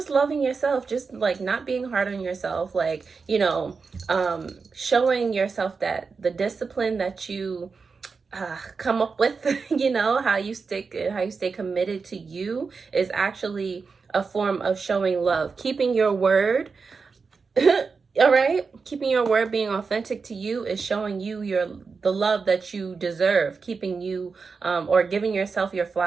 loving yourself, just like not being hard on yourself, like, you know, showing yourself that the discipline that you come up with, you know, how you stay committed to you is actually a form of showing love. Keeping your word, all right, keeping your word, being authentic to you is showing you the love that you deserve, keeping you or giving yourself your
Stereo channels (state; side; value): quieter; left; 4.9 dB